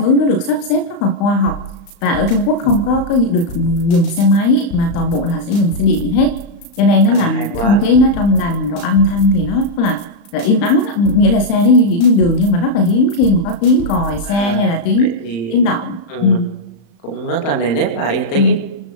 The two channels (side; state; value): right; late; 35 ms